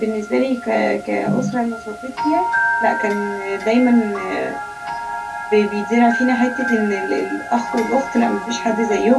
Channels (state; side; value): identical; both; correlation 1.00